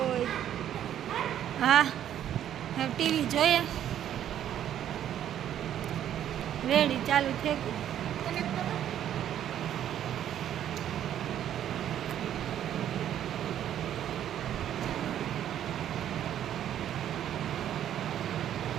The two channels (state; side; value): quieter; left; 10.7 dB